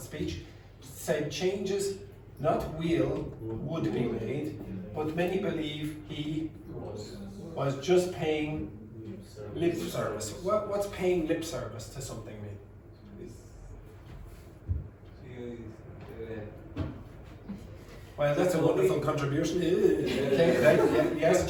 speech. Said changes, not will, would be made, but many believe he was just paying lip service. What's paying lip service to something mean? Well, that's a wonderful contribution. Okay, right? Yes,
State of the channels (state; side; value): identical; both; correlation 1.00